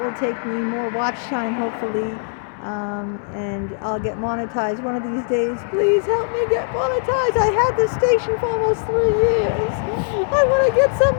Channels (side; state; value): right; silent; digital silence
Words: will take me. More watch time, hopefully. And I'll get monetized one of these days. Please help me get monetized. I had this station for almost 3 years. I want to get some